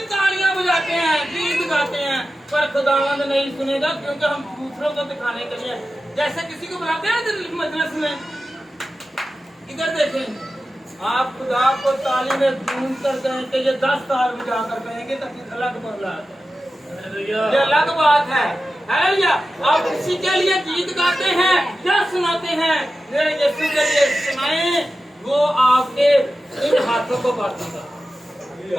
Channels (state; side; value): normal; both; correlation 0.93